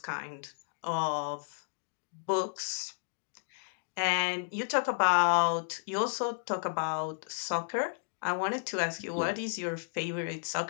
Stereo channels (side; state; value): right; silent; digital silence